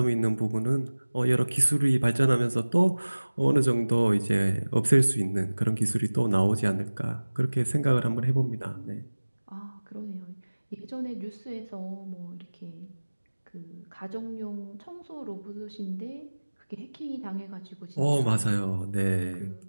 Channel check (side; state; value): both; inverted; correlation -1.00